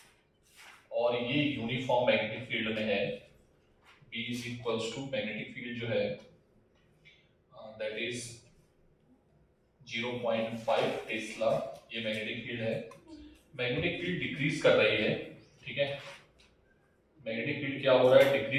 और ये यूनिफॉर्म मैग्नेटिक फील्ड में है, B is equals to magnetic field जो है दैट इज 0.5 टेस्ला, ये मैग्नेटिक फील्ड है। मैग्नेटिक फील्ड डिक्रीज कर रही है, ठीक है। मैग्नेटिक फील्ड क्या हो रहा है,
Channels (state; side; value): identical; both; correlation 1.00